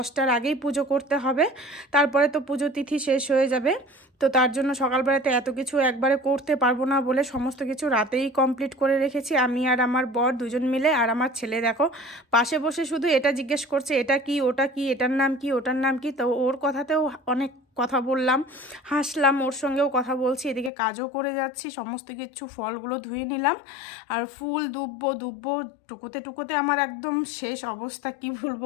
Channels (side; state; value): right; drops out; at 20.7 s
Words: আগেই পুজো করতে হবে। তারপরে তো পুজো তিথি শেষ হয়ে যাবে। তো তার জন্য সকালবেলাতে এত কিছু একবারে করতে পারবো না বলে সমস্ত কিছু রাতেই কমপ্লিট করে রেখেছি, আমি আর আমার বর দুজন মিলে। আর আমার ছেলে দেখো পাশে বসে শুধু এটা জিজ্ঞেস করছে, এটা কি, ওটা কি, এটার নাম কি, ওটার নাম কি। তো ওর কথাতেও অনেক কথা বললাম, হাসলাম, ওর সঙ্গেও কথা বলছি, এদিকে কাজও করে যাচ্ছি। সমস্ত কিছু ফলগুলো ধুয়ে নিলাম। আর ফুল দুব্বো টুকোতে টুকোতে আমার একদম শেষ অবস্থা, কি